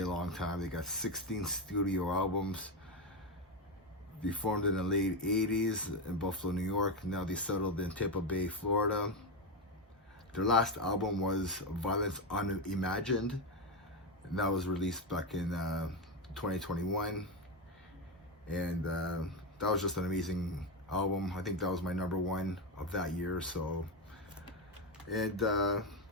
long time. They got 16 studio albums. They formed in the late 80s in Buffalo, New York. Now they settled in Tampa Bay, Florida. Their last album was Violence Unimagined, and that was released back in 2021, and that was just an amazing album. I think that was my #1 of that year. So, and I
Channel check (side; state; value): both; normal; correlation 0.11